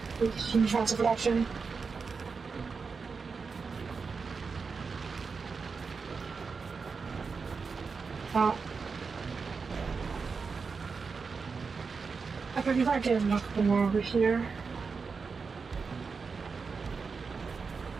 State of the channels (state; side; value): quieter; left; 5.0 dB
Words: huge amounts of production. I think if I get a couple more over here.